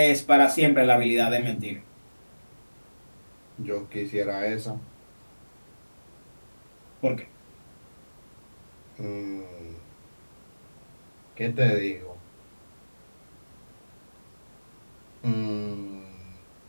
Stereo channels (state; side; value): inverted; both; correlation -1.00